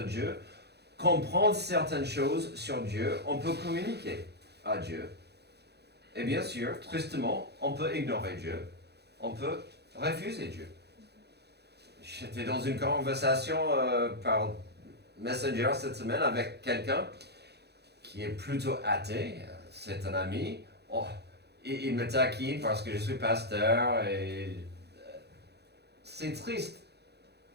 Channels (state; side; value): late; left; 0.48 ms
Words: Dieu, comprendre certaines choses sur Dieu, on peut communiquer à Dieu. Et bien sûr, tristement, on peut ignorer Dieu, on peut refuser Dieu. J'étais dans une conversation par Messenger cette semaine avec quelqu'un qui est plutôt athée. C'est un ami. Oh, il me taquine parce que je suis pasteur et c'est triste.